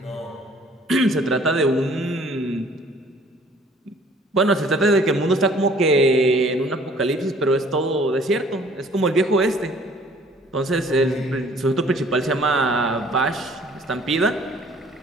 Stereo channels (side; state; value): both; normal; correlation 0.56